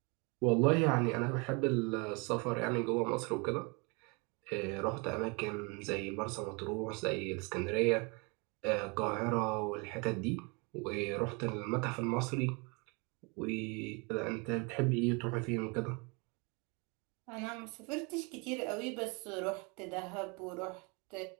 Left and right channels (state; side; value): quieter; left; 30.5 dB